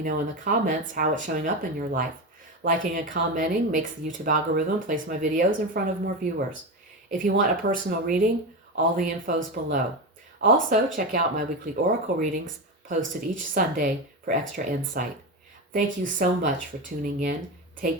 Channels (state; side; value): normal; both; correlation 0.18